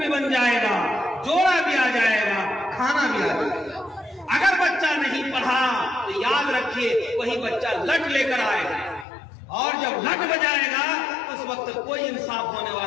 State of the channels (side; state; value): right; drops out; at 9.1 s